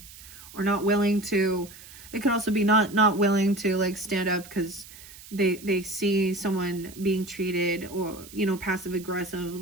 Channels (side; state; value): right; noise; hiss, 18 dB below the sound